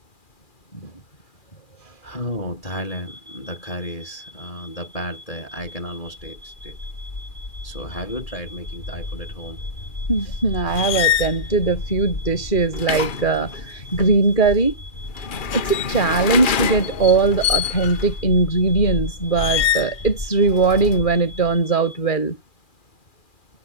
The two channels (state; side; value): late; right; 2.4 ms